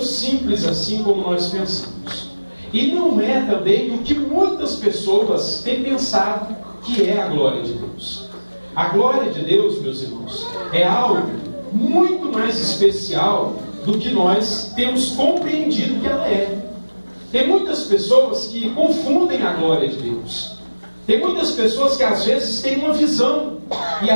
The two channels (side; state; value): both; inverted; correlation -1.00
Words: assim como nós pensamos. E não é também o que muitas pessoas têm pensado que é a glória de Deus. A glória de Deus, meus irmãos, é algo muito mais especial do que nós temos compreendido que ela é. Tem muitas pessoas que confundem a glória de Deus. Tem muitas pessoas que às vezes têm uma visão e